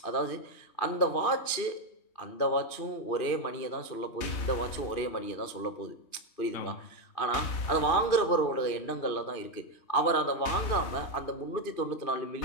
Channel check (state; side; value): late; right; 2.5 ms